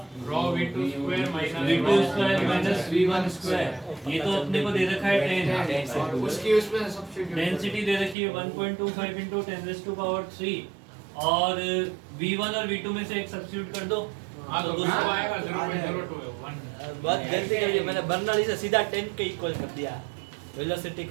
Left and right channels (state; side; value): drops out; left; at 8.2 s